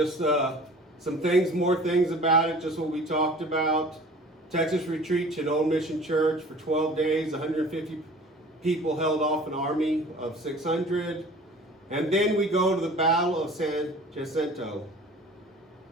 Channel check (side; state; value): both; normal; correlation 0.45